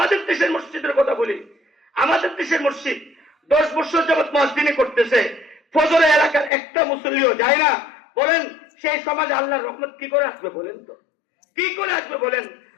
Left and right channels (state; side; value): drops out; right; at 6.5 s